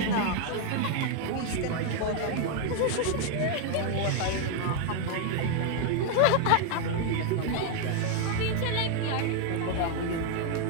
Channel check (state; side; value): different; both; correlation 0.00